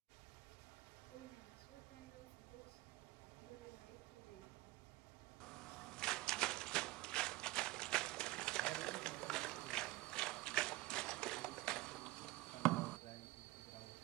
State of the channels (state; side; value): quieter; left; 19.8 dB